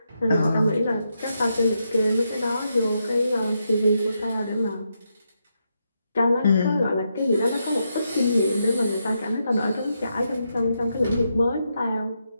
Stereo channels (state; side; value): inverted; both; correlation -0.82